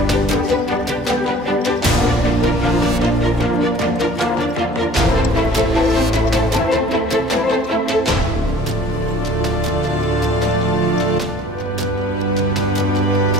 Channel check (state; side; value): normal; both; correlation 0.50